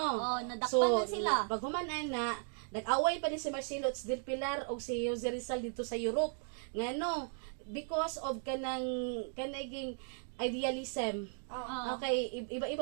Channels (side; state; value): left; silent; 54 dB below the other